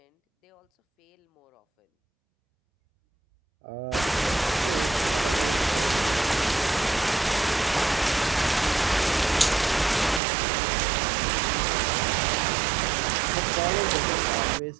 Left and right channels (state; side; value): drops out; left; at 10.2 s